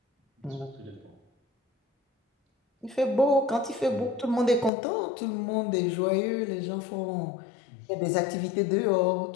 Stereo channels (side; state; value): right; drops out; at 4.7 s